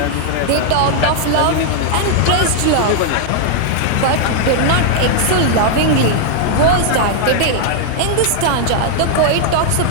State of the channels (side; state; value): both; different; correlation -0.01